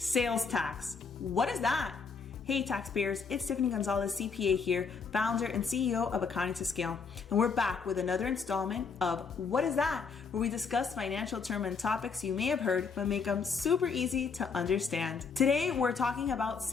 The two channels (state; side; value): quieter; right; 5.3 dB